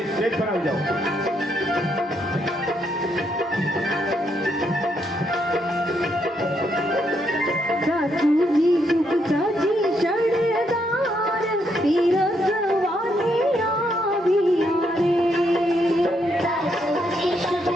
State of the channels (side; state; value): both; normal; correlation 0.76